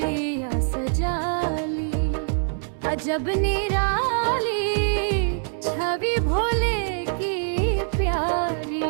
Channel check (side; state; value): left; silent; digital silence